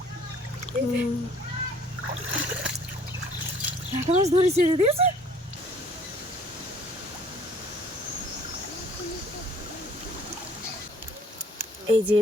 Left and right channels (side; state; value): both; normal; correlation 0.57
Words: লাটা মাছ ধরেছি দিয়েছে এই যে